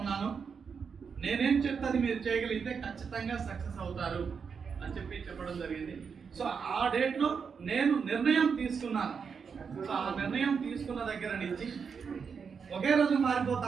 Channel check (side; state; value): left; quieter; 6.1 dB